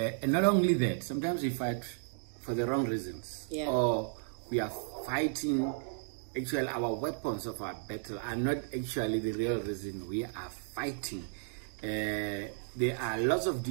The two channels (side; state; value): left; silent; digital silence